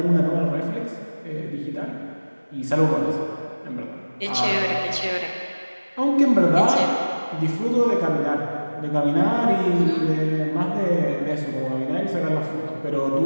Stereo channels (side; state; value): both; inverted; correlation -1.00